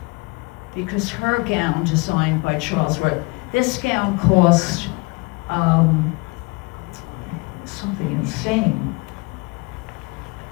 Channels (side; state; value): right; quieter; 27.6 dB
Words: because her gown, designed by Charles Worth, this gown cost something insane.